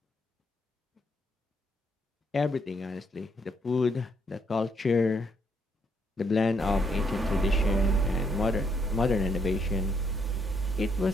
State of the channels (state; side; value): normal; both; correlation 0.73